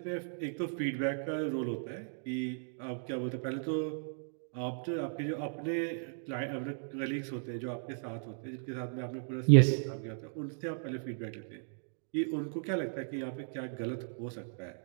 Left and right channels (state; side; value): silent; left; digital silence